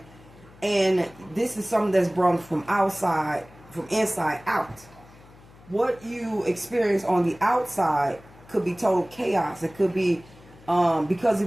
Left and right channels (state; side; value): noise; left; hum, 23 dB below the sound